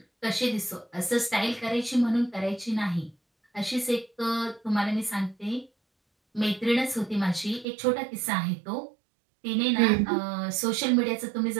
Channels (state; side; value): drops out; left; at 7.7 s